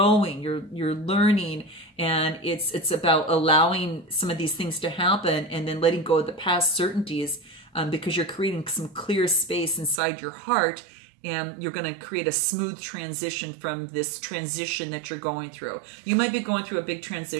you're learning, and it's about allowing some of these things to happen and then letting go of the past certainties, because you're creating some clear space inside your heart. And you're going to create a smooth transition from this transition that you're going through. You might be going through a big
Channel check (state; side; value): drops out; left; at 10.0 s